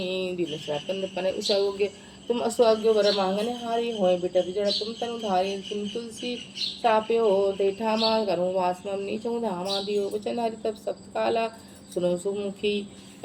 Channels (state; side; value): identical; both; correlation 1.00